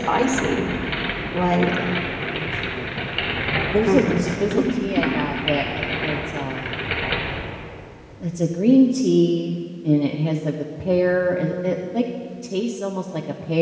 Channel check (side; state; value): both; identical; correlation 1.00